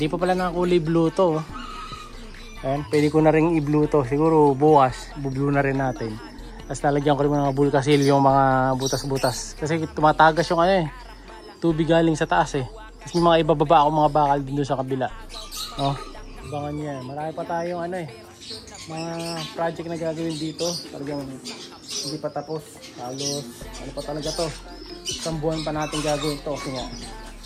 pa pala nakakulay blue to. Ayan, pwede ko na rin i-blue to. Siguro bukas, bu-blue na rin natin. Tapos lalagyan ko rin mga bulkasil yung mga butas-butas. Kasi tumatagas yung ano eh. Tubig galing sa taas eh. Tapos yung mga ibababa ako mga bakal din doon sa kabila. Oh, abangan niya. Marami pa tayong ano eh. Mga project na gagawin dito. Talagang hindi pa tapos. Halos, ano pa talaga to. Isang buwan pa natin gagawin to. Kasi nga,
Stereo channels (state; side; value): identical; both; correlation 1.00